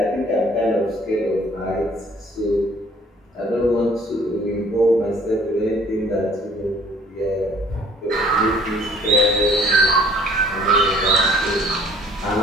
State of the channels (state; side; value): normal; both; correlation 0.56